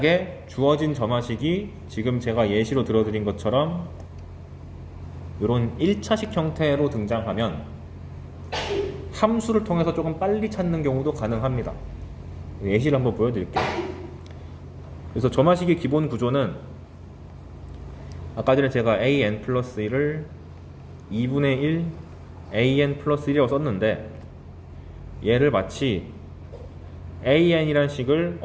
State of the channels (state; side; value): identical; both; correlation 1.00